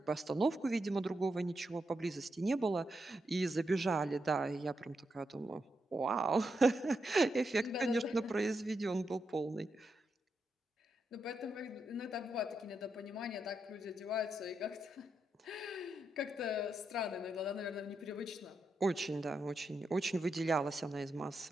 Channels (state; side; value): normal; both; correlation 0.84